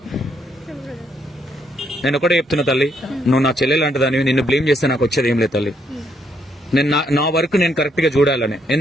నేను ఒకటే చెప్తున్నా తల్లి, నువ్వు నా చెల్లెలు అంటదానివి, నిన్ను బ్లేమ్ చేస్తే నాకు వచ్చేది ఏం లేదు తల్లి. నేను నా వర్క్ నేను కరెక్ట్ గా చూడాలని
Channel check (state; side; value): normal; both; correlation 0.73